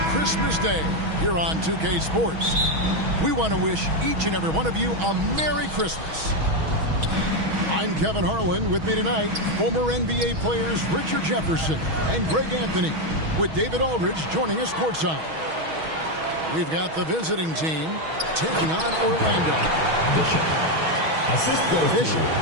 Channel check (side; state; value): left; late; 6.3 ms